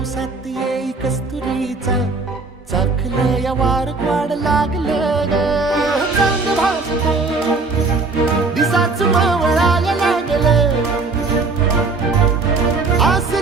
साथ येई कस्तुरीचा चाखलं या वार वाड लागलं ग चांग भासलं दिसाच मावळायला लागलं आस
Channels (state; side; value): quieter; left; 3.9 dB